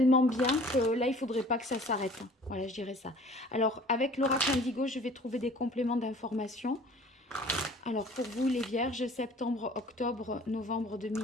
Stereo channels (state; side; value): normal; both; correlation 0.49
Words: bien que là, il ne faudrait pas que ça s'arrête. Voilà, je dirais ça. Alors, avec l'oracle indigo, je vais trouver des compléments d'information. Alors, pour vous, les Vierges, septembre, octobre, novembre